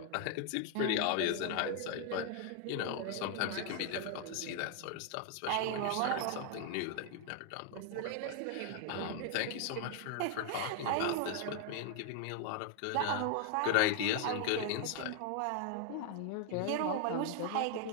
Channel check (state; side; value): different; both; correlation 0.00